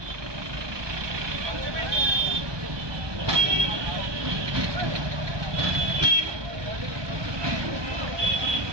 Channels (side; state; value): left; late; 1.2 ms